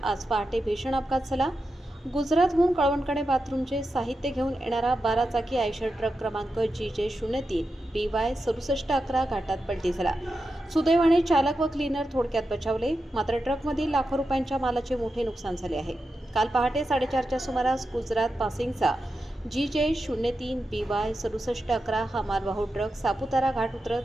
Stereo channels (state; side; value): normal; both; correlation 0.89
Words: आज पहाटे भीषण अपघात झाला. गुजरातहून कळवणकडे बाथरूमचे साहित्य घेऊन येणारा 12 चाकी आयशर ट्रक क्रमांक GJ03 BY 6711 घाटात पलटी झाला. सुदैवाने चालक व क्लीनर थोडक्यात बचावले, मात्र ट्रकमधील लाखो रुपयांच्या मालाचे मोठे नुकसान झाले आहे. काल पहाटे 4:30च्या सुमारास गुजरात पासिंगचा GJ03 BY 6711 हा मालवाहू ट्रक सापुतारा घाट